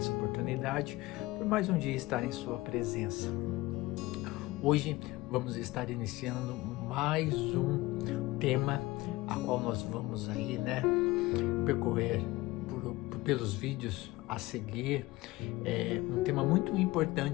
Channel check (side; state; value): right; quieter; 19.8 dB